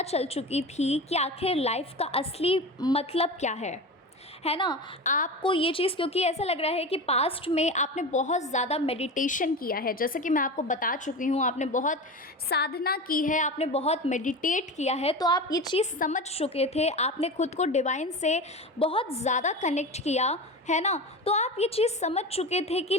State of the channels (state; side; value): normal; both; correlation 0.27